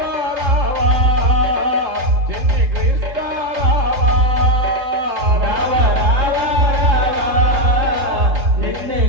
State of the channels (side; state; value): left; late; 3.7 ms